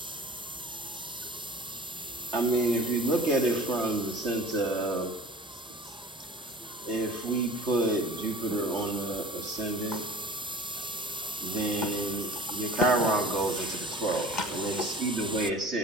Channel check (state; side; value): normal; both; correlation 0.43